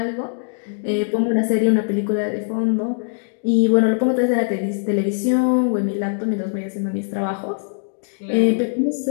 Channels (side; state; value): right; silent; digital silence